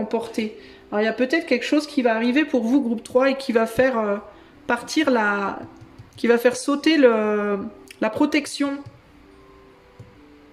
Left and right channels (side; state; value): both; identical; correlation 1.00